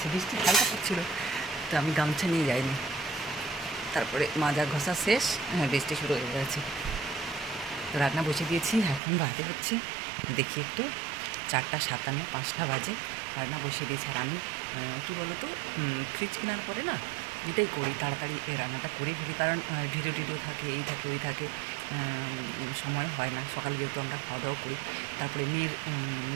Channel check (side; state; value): left; drops out; at 9.0 s